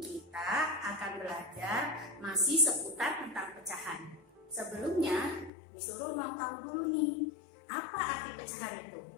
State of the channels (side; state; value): right; drops out; at 5.5 s